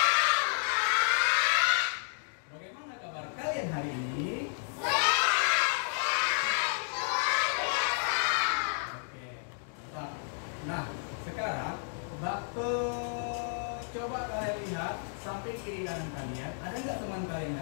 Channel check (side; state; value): right; silent; digital silence